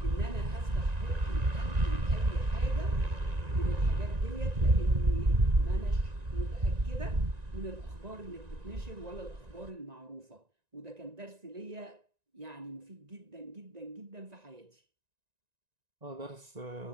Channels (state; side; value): late; left; 1.9 ms